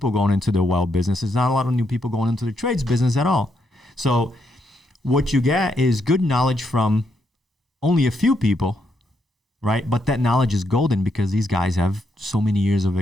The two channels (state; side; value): normal; both; correlation 0.78